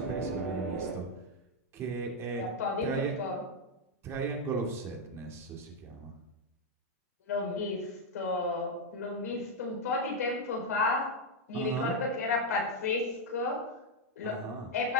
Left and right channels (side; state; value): both; normal; correlation 0.01